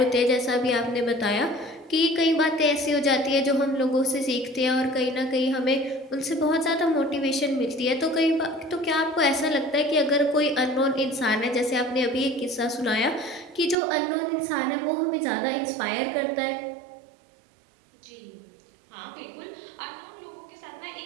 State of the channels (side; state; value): left; drops out; at 13.8 s